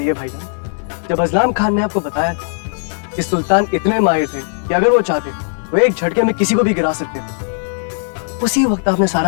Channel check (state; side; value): silent; right; 68 dB below the other